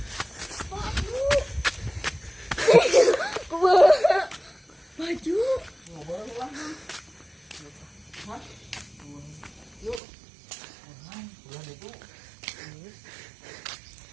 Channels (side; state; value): left; drops out; at 10.0 s